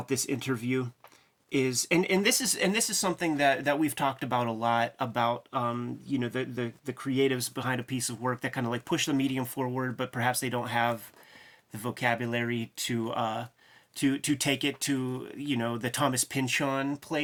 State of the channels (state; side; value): identical; both; correlation 1.00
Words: this interview is, and this is something that we've talked about a lot about, the creatives behind a piece of work that kind of like push the medium forward, but perhaps they don't have the vocabulary to take it to, the Thomas Pynchon